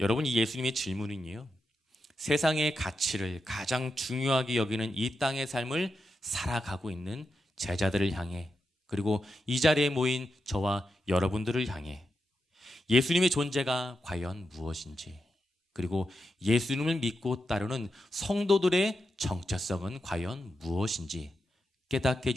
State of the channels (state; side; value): normal; both; correlation 0.87